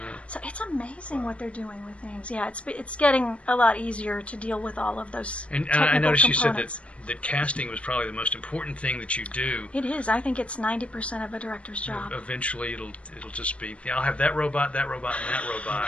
So it's amazing what they're doing with things. Yeah, it's getting a lot easier to deal with all of those. And technical I noticed you components. said that casting was probably the most important thing that you do. It is. I think it's 90% of a director's job. Eventually, it'll just be. Yeah, I'll have that robot, and that robot.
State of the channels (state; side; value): late; right; 0.062 ms